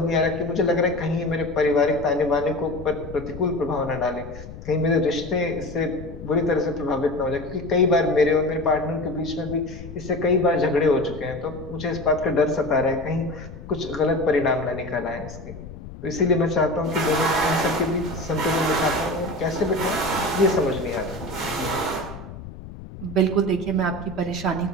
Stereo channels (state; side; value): noise; left; rumble, 14 dB below the sound